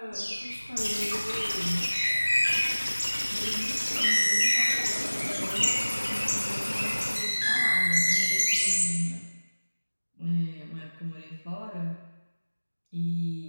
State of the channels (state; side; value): inverted; both; correlation -1.00